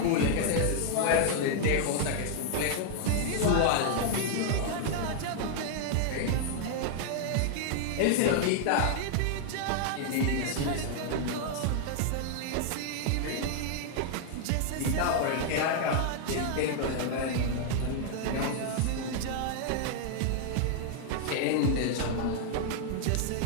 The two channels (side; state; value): both; different; correlation 0.00